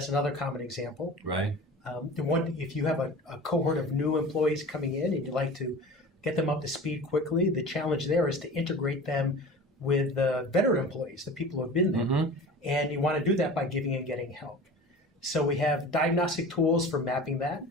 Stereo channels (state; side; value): normal; both; correlation 0.37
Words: another common example. Right. If you have a cohort of new employees coming in and you'd like to get them up to speed quickly, the challenge there is to integrate them with veteran employees, the people who have been there. And you want to do that by giving and getting help. So we have diagnostic tools for mapping that.